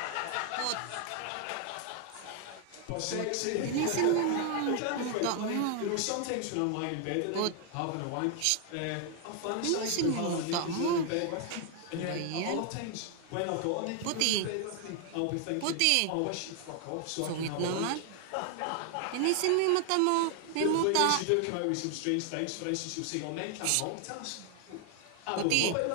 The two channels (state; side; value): different; both; correlation 0.00